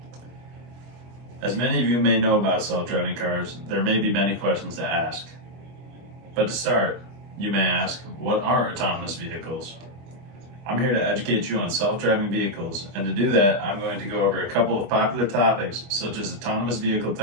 As many of you may know about self-driving cars, there may be many questions to ask. But to start, you may ask, what are autonomous vehicles? I'm here to educate you on self-driving vehicles, and to do that, I'm going to go over a couple of popular topics such as autonomous vehicle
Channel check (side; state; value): left; late; 24 ms